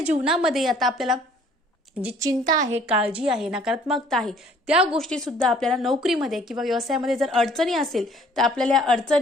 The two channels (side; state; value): both; normal; correlation 0.57